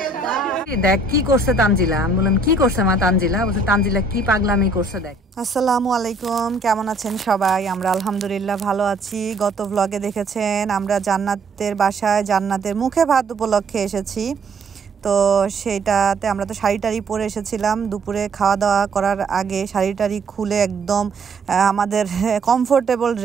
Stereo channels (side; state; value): left; quieter; 3.2 dB